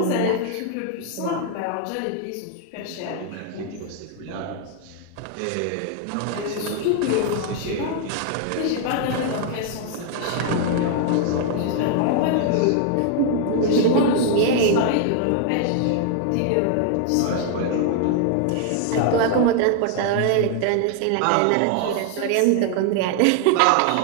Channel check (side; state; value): both; different; correlation 0.00